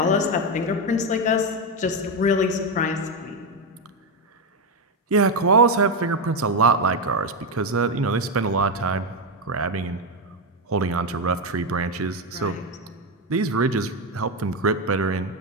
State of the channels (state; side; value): normal; both; correlation 0.08